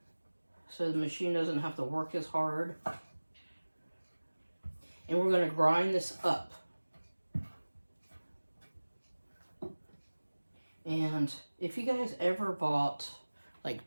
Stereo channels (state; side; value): inverted; both; correlation -1.00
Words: so the machine doesn't have to work as hard. And we're going to grind this up. And if you guys ever bought like